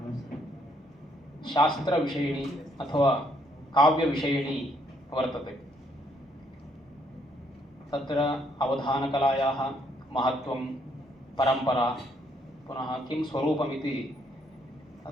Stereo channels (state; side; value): normal; both; correlation 0.70